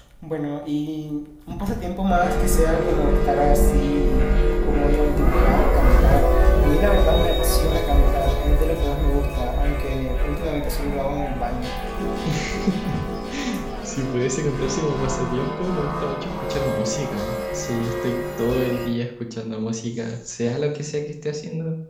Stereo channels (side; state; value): both; identical; correlation 1.00